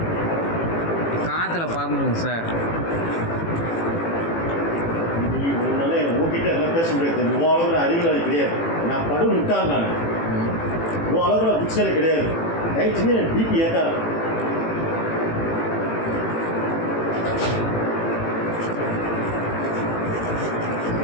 காற்றுல பறந்துருங்க சார். உன்னால உங்ககிட்ட எல்லாம் பேச முடியாது. உன் அளவில் அறிவியல் கிடையாது. நான் படம் விட்டான். நான் உன் அளவில் புக்ஸில் கிடையாது. தயவுசெய்து எனக்கு பிபி ஏற்றாது.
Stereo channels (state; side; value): late; right; 18 ms